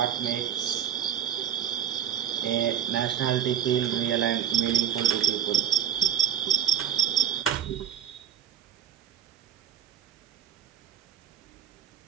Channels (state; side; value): quieter; left; 9.8 dB